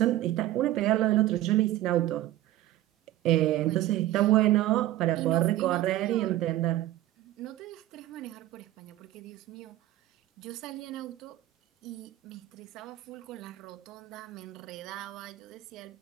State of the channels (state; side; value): quieter; left; 14.6 dB